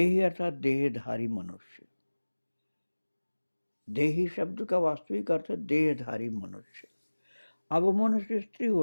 अर्थात देहधारी मनुष्य। देही शब्द का वास्तविक अर्थ है देहधारी मनुष्य। अब वो मनुष्य स्त्री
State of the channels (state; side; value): inverted; both; correlation -1.00